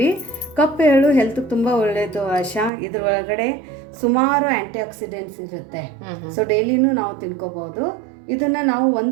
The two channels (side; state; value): left; drops out; at 2.7 s